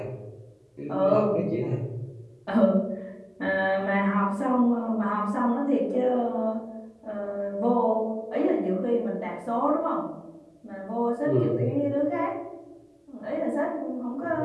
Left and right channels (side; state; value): both; identical; correlation 1.00